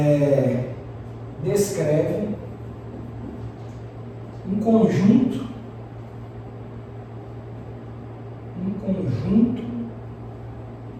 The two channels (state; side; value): identical; both; correlation 1.00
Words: descreve um conjunto